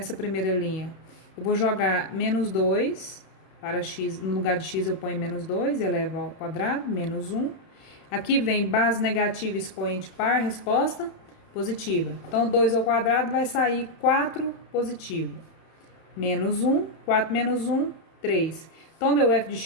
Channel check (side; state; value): right; late; 31 ms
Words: primeira linha? Eu vou jogar menos 2. Para x, no lugar de x eu ponho menos 2, eleva ao quadrado, menos 1. Aqui vem base negativa, expoente par, resposta positiva. Então, 2 ao quadrado vai sair 4 positivo. Menos 1, 4 menos 1, 3. Então, meu f de